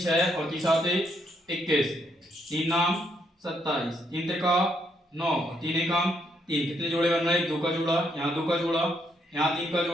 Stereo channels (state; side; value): normal; both; correlation 0.74